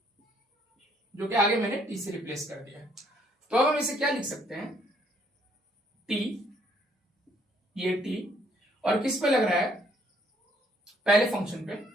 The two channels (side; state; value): both; normal; correlation 0.67